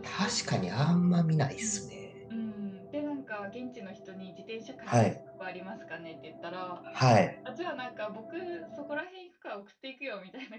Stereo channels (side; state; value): both; identical; correlation 1.00